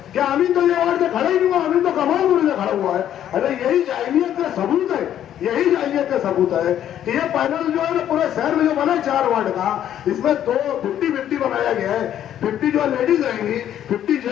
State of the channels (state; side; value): quieter; right; 10.8 dB